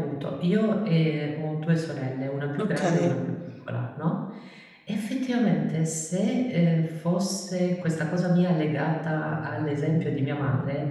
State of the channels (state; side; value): identical; both; correlation 1.00